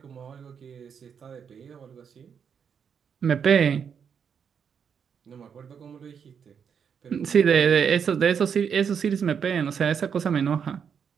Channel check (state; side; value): quieter; left; 7.2 dB